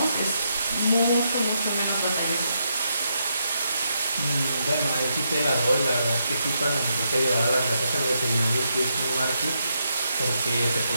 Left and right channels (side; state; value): both; inverted; correlation -0.80